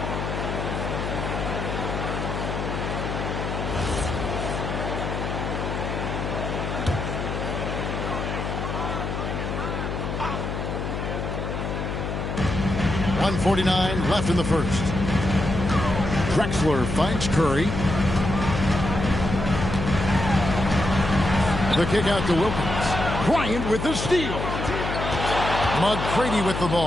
.149 left in the first. Drexler finds Curry. The kick out to Wilkins. Bryant with the steal. McGrady with the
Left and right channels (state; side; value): noise; left; hum, 4 dB below the sound